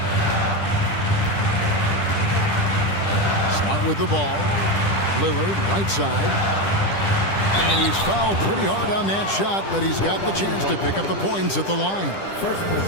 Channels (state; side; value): late; right; 10 ms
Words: Smart with the ball. Lillard, right side. And he's fouled pretty hard on that shot, but he's got the chance to pick up the points at the line.